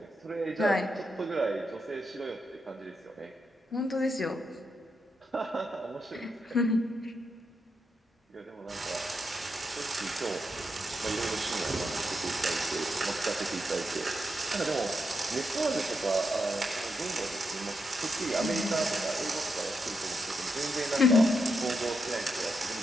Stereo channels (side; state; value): both; normal; correlation 0.83